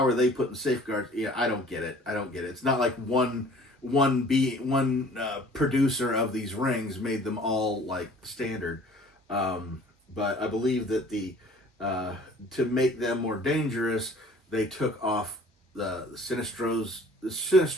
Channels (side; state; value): both; normal; correlation 0.51